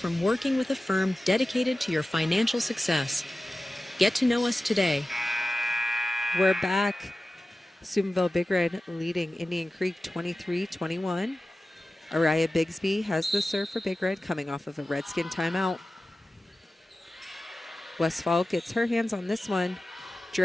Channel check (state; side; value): normal; both; correlation 0.95